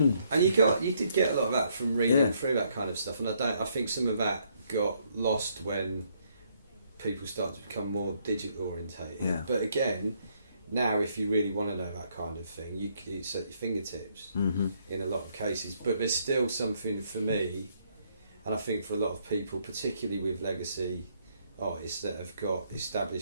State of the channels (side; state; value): both; inverted; correlation -0.71